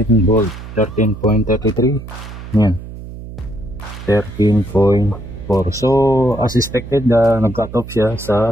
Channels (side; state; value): right; noise; hum, 12 dB below the sound